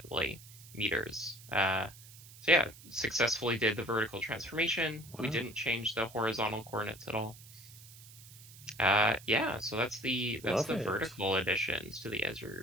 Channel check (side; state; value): right; noise; hiss, 19 dB below the sound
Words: meters. So yeah, successfully did the vertical transformation. Wow. We didn't change the horizontal coordinates at all. Yeah, so that's the vertical additions to the